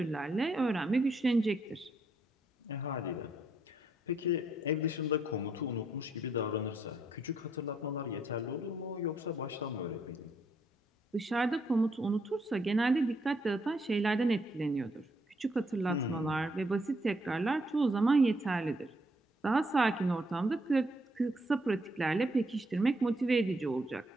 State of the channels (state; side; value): normal; both; correlation 0.74